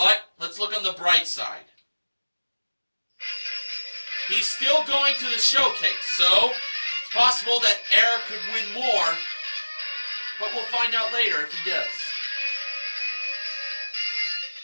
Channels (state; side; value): inverted; both; correlation -1.00